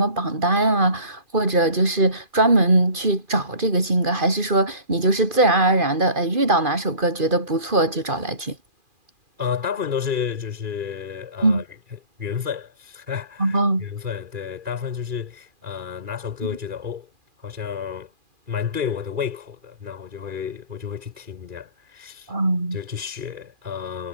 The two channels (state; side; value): late; left; 2.5 ms